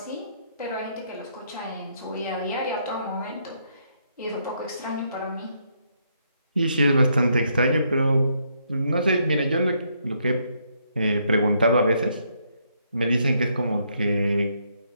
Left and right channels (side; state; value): both; inverted; correlation -0.74